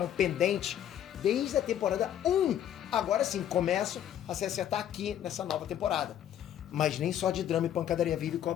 pendentes desde a temporada 1. Agora sim, começam a se acertar aqui nessa nova temporada. Mas nem só de drama e pancadaria vive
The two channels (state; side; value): quieter; right; 10.6 dB